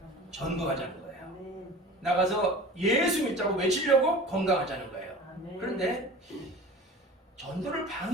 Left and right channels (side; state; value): both; normal; correlation 0.39